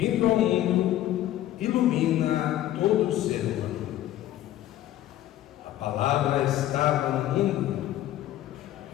ao mundo, ilumina todo ser humano. A palavra estava no mundo,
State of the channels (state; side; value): quieter; right; 13.3 dB